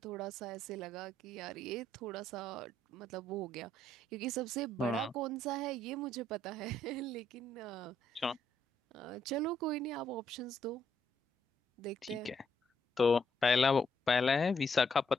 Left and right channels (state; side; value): normal; both; correlation 0.73